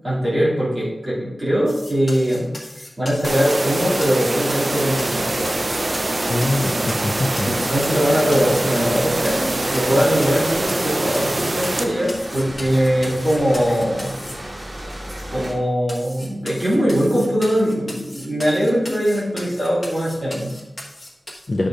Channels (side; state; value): both; normal; correlation 0.96